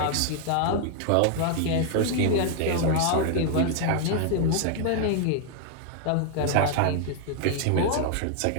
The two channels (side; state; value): both; different; correlation 0.00